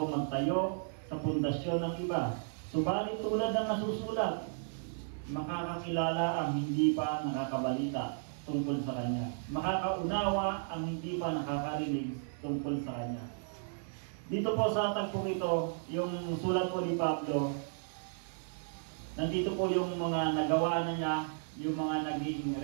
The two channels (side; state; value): left; silent; digital silence